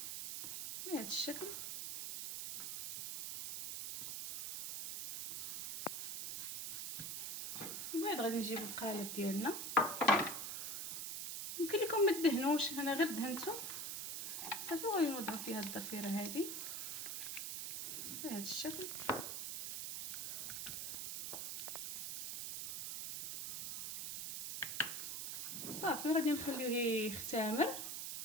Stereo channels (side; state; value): right; noise; hiss, 4 dB below the sound